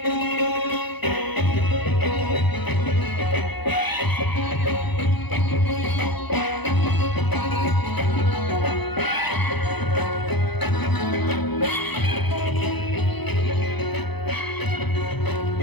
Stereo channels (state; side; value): late; right; 0.99 ms